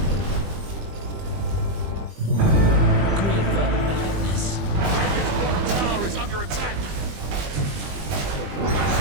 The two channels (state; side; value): late; left; 20 ms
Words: Grief of madness. Dragon's bottom tower is under attack.